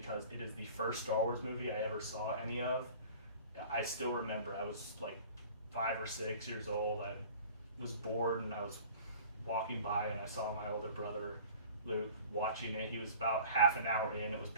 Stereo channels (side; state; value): both; inverted; correlation -0.45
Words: it is the first Star Wars movie I ever saw any of. I still remember I was like 5 or 6 years old. I was bored and I was walking by and I saw my older brother Luke watching it. He was about half an hour in. It was